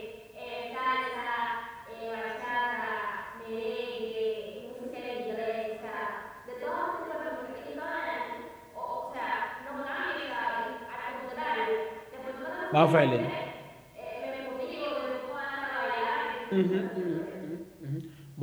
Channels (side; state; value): both; identical; correlation 1.00